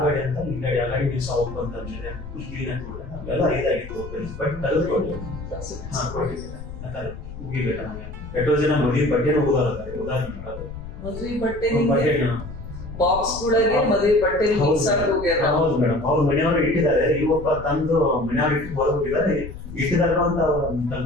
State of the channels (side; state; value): left; noise; rumble, 12 dB below the sound